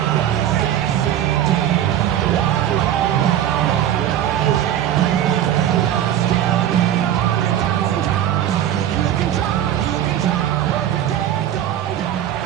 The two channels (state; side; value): quieter; left; 11.2 dB